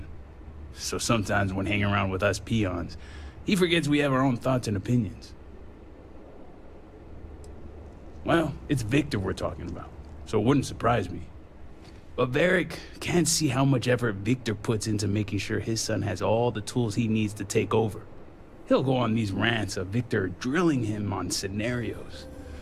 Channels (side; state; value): both; identical; correlation 1.00